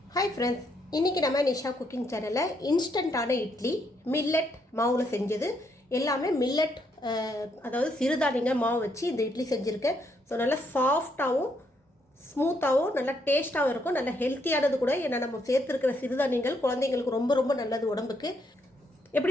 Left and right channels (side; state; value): both; normal; correlation 0.75